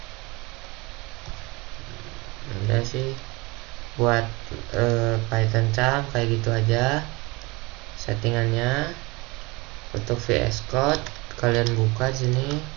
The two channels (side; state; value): left; quieter; 25.1 dB